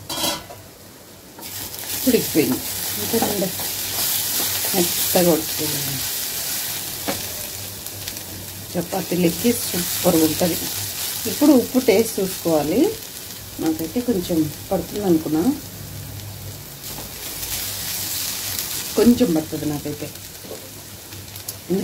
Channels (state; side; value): identical; both; correlation 1.00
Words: ఉడికిపోయింది. అంతేనండి, మెత్తగా ఉడికిపోయింది. చపాతీలకి సూపర్గా ఉంటుంది. ఇప్పుడు ఉప్పు టేస్ట్ చూసుకోవాలి. నాకైతే కొంచెం పడుతుంది అనుకున్నా, కొంచెం పడుతుంది నాకైతే,